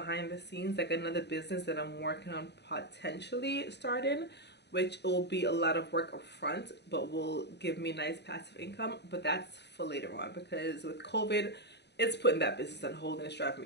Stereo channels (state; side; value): late; right; 0.49 ms